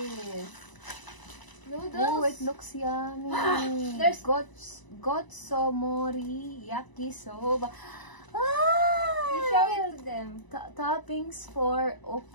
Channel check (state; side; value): late; right; 1.0 ms